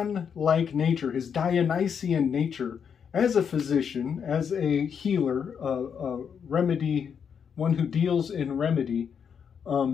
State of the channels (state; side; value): quieter; right; 7.2 dB